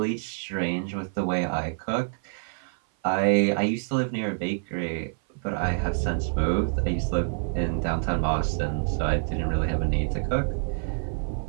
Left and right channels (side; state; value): left; silent; 56 dB below the other